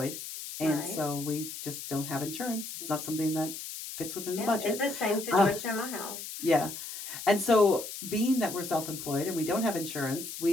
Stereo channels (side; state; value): left; noise; hiss, 9 dB below the sound